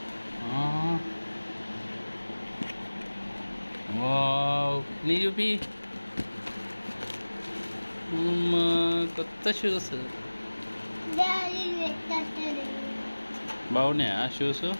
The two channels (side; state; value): both; inverted; correlation -1.00